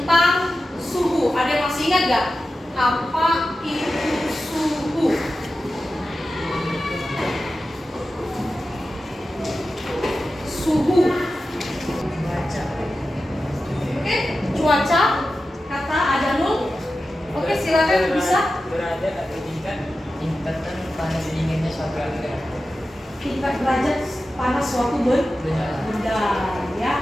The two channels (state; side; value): normal; both; correlation 0.93